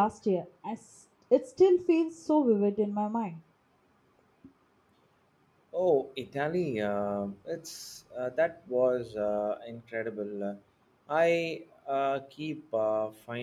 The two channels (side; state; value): both; identical; correlation 1.00